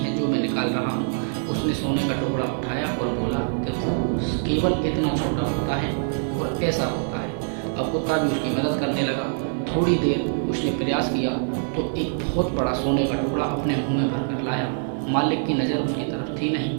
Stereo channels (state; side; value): silent; left; digital silence